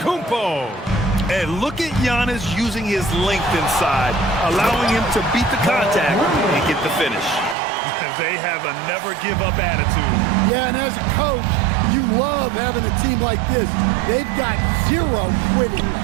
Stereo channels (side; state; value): left; drops out; at 7.6 s